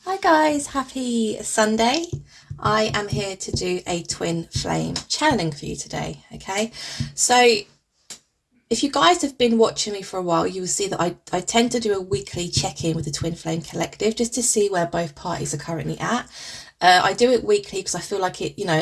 Hi guys, happy Sunday. I am here to do a twin flame channeling for you today, okay? So if you guys have been watching me for a while, you will see that I tend to do a weekly check-in with the Twin Flame Collective just to see where both parties are currently at. I do it weekly because I feel like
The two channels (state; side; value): identical; both; correlation 1.00